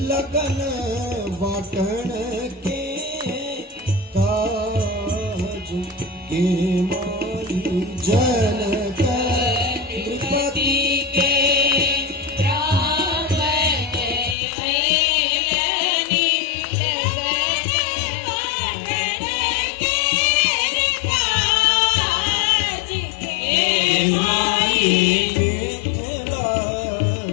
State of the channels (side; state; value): right; drops out; at 14.4 s